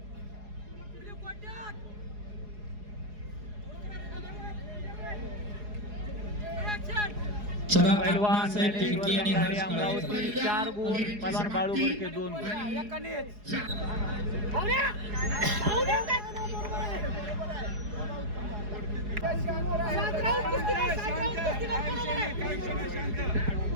चला पैलवान साहेब खिडकी आणि हर्ष कळवे. अमरावती 4 गुण, पैलवान बाळू बोडके 2 गुण.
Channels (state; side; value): late; left; 4.8 ms